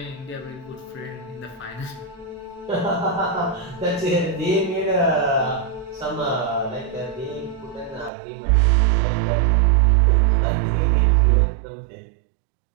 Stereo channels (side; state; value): left; drops out; at 8.1 s